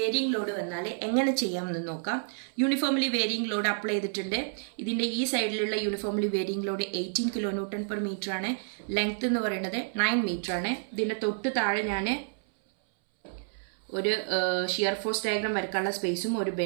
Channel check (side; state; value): left; silent; 58 dB below the other